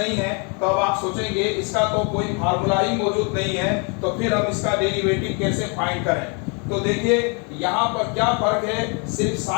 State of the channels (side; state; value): right; quieter; 35.1 dB